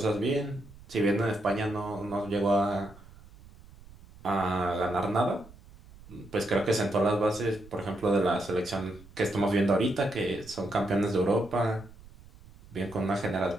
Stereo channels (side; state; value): right; noise; rumble, 21 dB below the sound